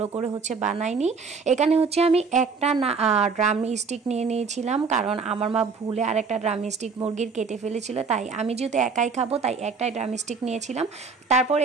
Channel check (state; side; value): quieter; left; 5.0 dB